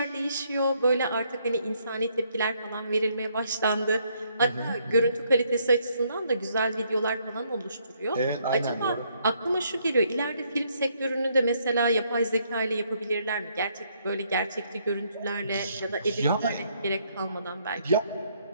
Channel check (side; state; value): both; inverted; correlation -0.70